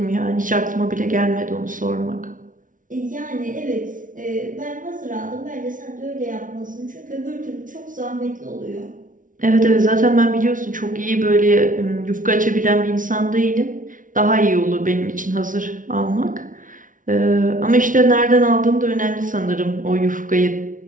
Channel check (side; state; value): left; late; 0.38 ms